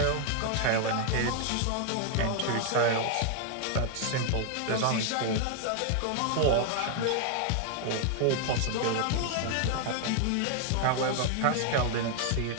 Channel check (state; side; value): different; both; correlation 0.00